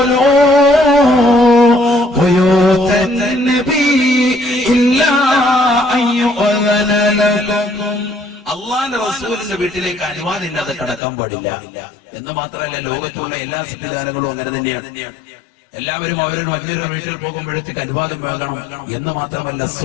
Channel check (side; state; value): right; drops out; at 11.0 s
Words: بيوت النبي إلا أن يؤذن لكم അള്ളാന്റെ റസൂലിന്റെ വീട്ടിലേക്ക് അനുവാദം ഇല്ലാതെ കടക്കാൻ പാടില്ല എന്ന് മാത്രമല്ല ലോകത്തുള്ള എല്ലാ സംവിധാനങ്ങളും അങ്ങനെ തന്നെയാണ്. എല്ലാവരും അവരുടെ മറ്റൊരു വീട്ടിൽ പോകുമ്പോഴത്തേക്ക് അനുവാദം വാങ്ങണം എന്ന് മാത്രമല്ല